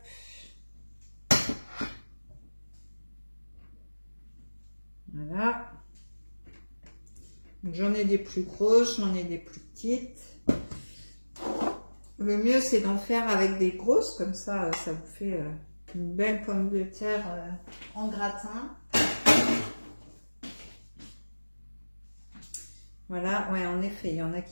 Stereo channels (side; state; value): both; inverted; correlation -1.00